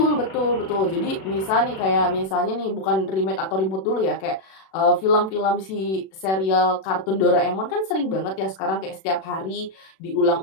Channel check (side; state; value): right; late; 37 ms